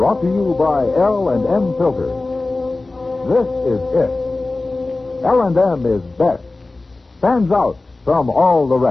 to you by L&M Filters. This is it. L&M is best. Stands out from all the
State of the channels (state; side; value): quieter; right; 3.2 dB